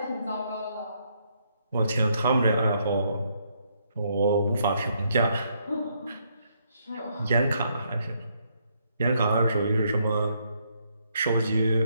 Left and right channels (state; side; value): inverted; both; correlation -0.74